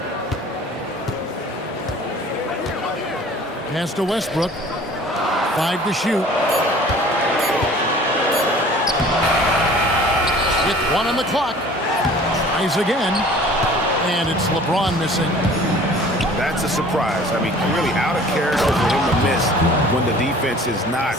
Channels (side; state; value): both; normal; correlation 0.48